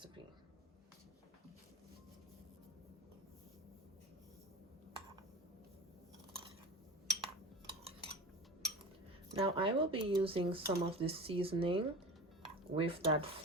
Now I will be using some of this seasoning with that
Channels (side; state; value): both; normal; correlation 0.32